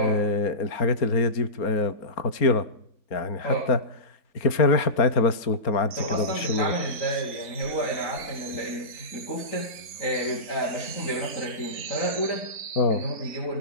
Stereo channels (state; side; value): late; right; 4.3 ms